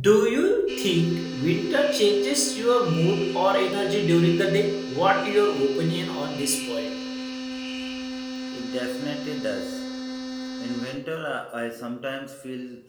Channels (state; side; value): identical; both; correlation 1.00